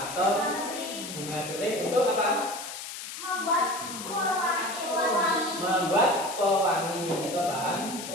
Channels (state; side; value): noise; left; hiss, 9 dB below the sound